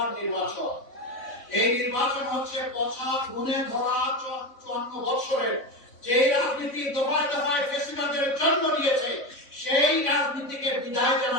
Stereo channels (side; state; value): right; late; 3.5 ms